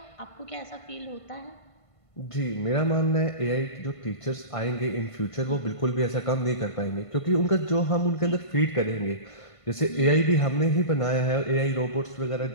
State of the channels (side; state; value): right; late; 1.5 ms